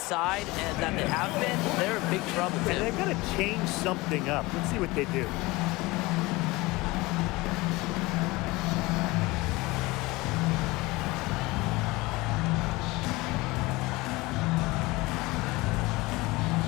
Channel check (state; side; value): quieter; right; 21.8 dB